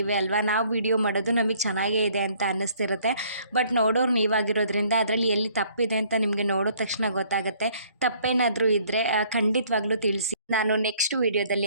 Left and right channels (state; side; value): inverted; both; correlation -0.61